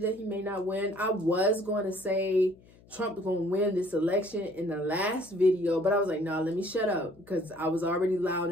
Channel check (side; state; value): left; noise; hum, 26 dB below the sound